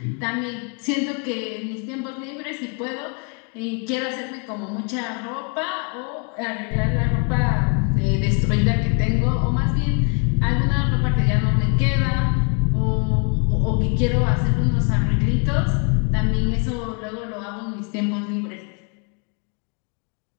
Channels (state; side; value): quieter; right; 39.9 dB